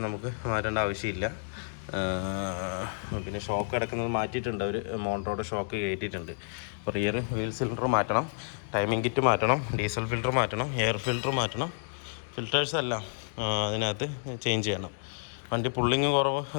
നമുക്ക് മാറ്റേണ്ട ആവശ്യമില്ല. പിന്നെ ഷോക്ക് അടക്കുന്നത് മാറ്റിയിട്ടുണ്ട് അവർ, മോട്ടോറുടെ ഷോക്ക് കയറ്റിയിട്ടുണ്ട്. അപ്പോൾ റിയർ വീൽ സിലിണ്ടർ മാറ്റണം, ടൈമിംഗ് കിറ്റ് മാറ്റണം, ഡീസൽ ഫിൽറ്റർ മാറ്റണം, എയർ ഫിൽറ്റർ മാറ്റണം, ഫിൽറ്റേഴ്സ് എല്ലാം അതിനകത്ത് ചേഞ്ച് ചെയ്യണം. വണ്ടി പുള്ളിങ് കുറവ്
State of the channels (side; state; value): right; silent; digital silence